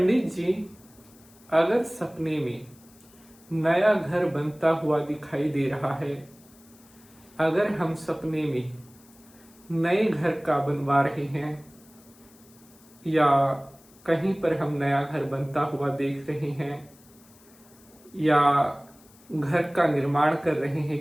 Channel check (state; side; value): noise; left; hiss, 27 dB below the sound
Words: जी, अगर सपने में नया घर बनता हुआ दिखाई दे रहा है, अगर हम सपने में नए घर का बनवा रहे हैं या कहीं पर हम नया घर बनता हुआ देख रहे हैं या घर का निर्माण कर रहे